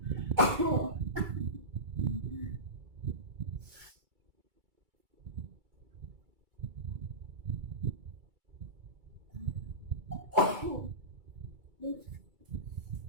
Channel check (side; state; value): left; late; 2.3 ms